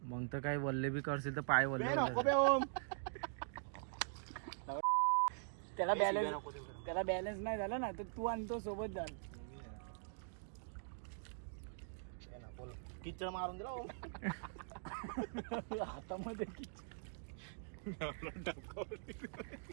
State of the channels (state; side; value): silent; left; digital silence